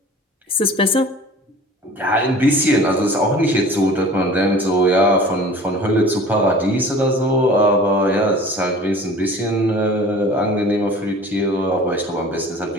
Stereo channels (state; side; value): normal; both; correlation 0.43